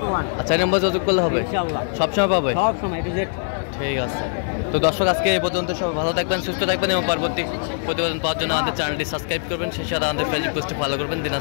আচ্ছা এই নম্বর যোগাযোগ করলে হবে? ইনশাআল্লাহ সবসময় পাবে? সব সময় টু জেড। ঠিক আছে। তো দর্শক আজকে এই পর্যন্ত, সবাই ভালো থাকবেন সুস্থ থাকবেন এবং পরবর্তী প্রতিবেদন পাওয়ার জন্য আমাদের চ্যানেলটি সাবস্ক্রাইব করবেন, সেই সাথে আমাদের ফেসবুক পেজটি ফলো করবেন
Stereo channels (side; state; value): right; silent; 64 dB below the other